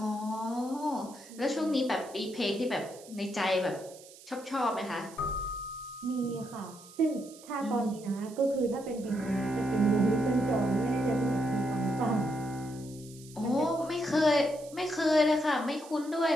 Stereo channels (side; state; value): right; noise; hiss, 20 dB below the sound